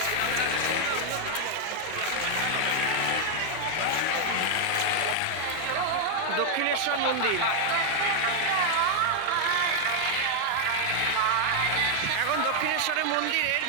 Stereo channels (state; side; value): different; both; correlation 0.00